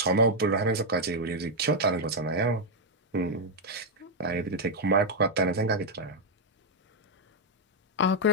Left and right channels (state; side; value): normal; both; correlation -0.02